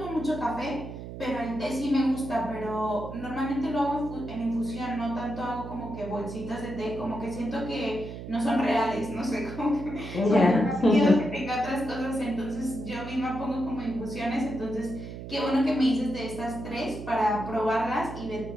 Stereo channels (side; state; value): right; noise; hum, 10 dB below the sound